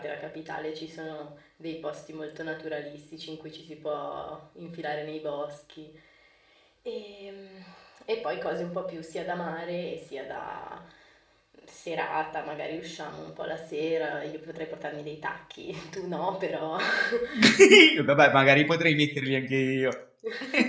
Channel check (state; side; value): identical; both; correlation 1.00